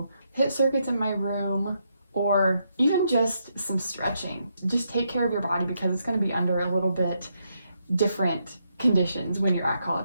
HIIT circuits in my room, or even just some stretching. Just take care of your body because it's going to be under a little bit different conditions when you're at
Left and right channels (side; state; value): both; inverted; correlation -0.79